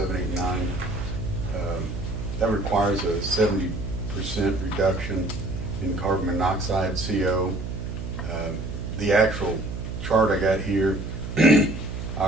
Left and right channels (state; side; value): noise; right; hum, 7 dB below the sound